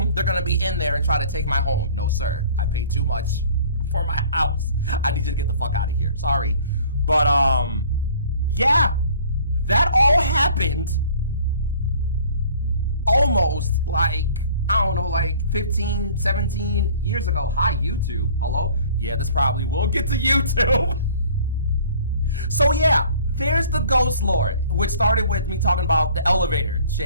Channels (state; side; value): inverted; both; correlation -0.52